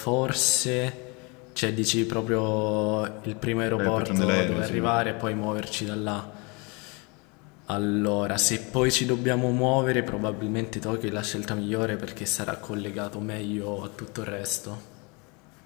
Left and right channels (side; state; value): right; quieter; 30.0 dB